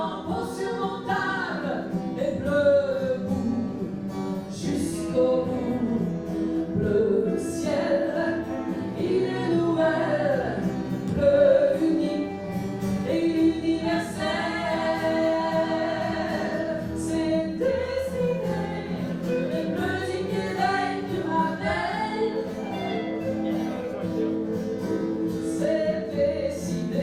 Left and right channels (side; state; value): both; identical; correlation 1.00